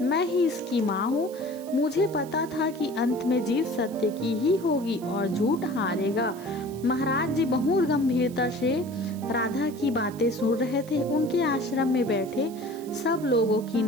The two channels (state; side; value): noise; right; hiss, 21 dB below the sound